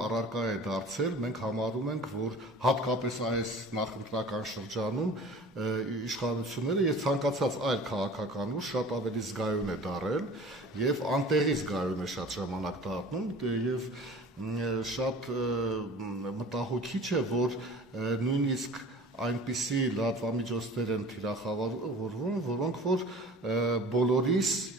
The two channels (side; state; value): both; normal; correlation 0.43